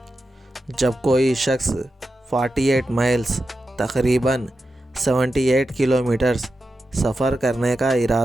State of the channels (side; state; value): both; normal; correlation 0.90